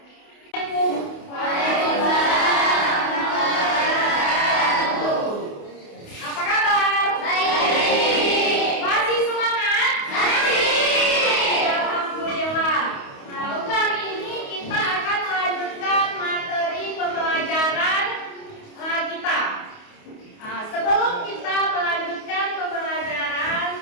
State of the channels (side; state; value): right; late; 28 ms